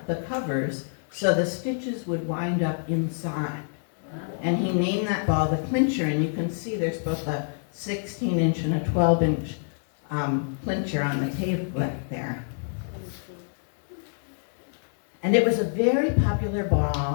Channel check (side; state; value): right; silent; digital silence